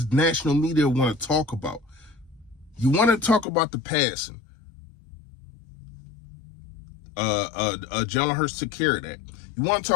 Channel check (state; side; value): drops out; right; at 3.5 s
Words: national media want to talk about. You want to talk about the passing. Jalen Hurts took care of that. You want to